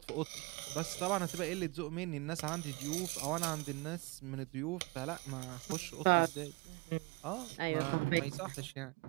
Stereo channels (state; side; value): quieter; left; 27.7 dB